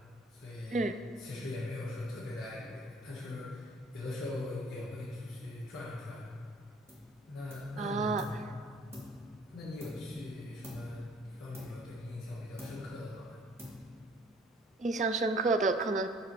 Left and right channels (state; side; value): normal; both; correlation 0.56